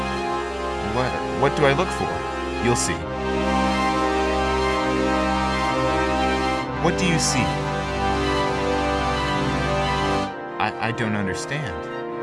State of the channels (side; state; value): both; identical; correlation 1.00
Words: What do I look for?" "You'll see." "What do you see?" I don't understand."